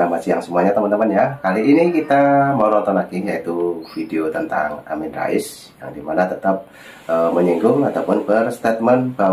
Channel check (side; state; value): both; identical; correlation 1.00